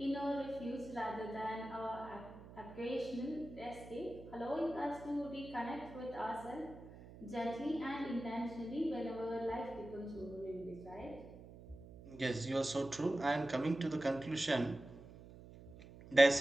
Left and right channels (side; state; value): right; noise; hum, 16 dB below the sound